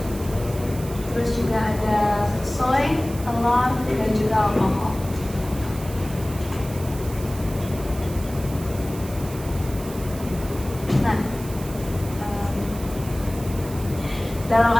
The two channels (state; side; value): noise; right; hiss, 15 dB below the sound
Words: Terus juga ada soy, telur, dan juga alkohol. Nah, dalam